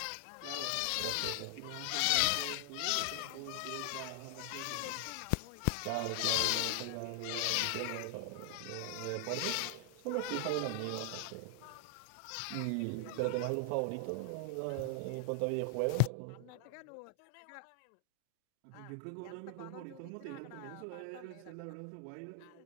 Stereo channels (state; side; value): different; both; correlation 0.00